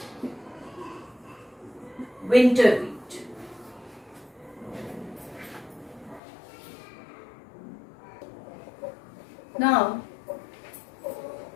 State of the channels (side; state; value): right; drops out; at 6.2 s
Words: winter wheat. Now,